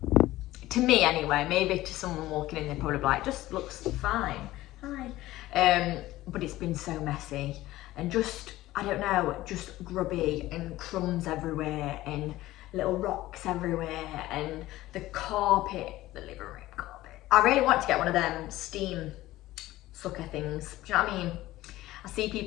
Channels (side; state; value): right; quieter; 16.5 dB